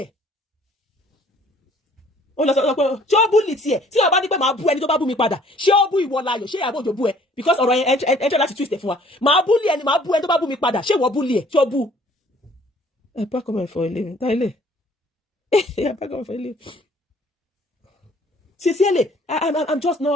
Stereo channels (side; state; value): both; normal; correlation 0.57